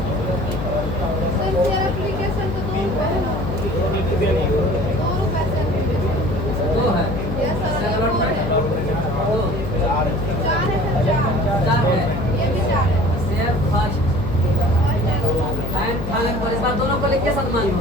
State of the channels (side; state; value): left; noise; hum, 4 dB below the sound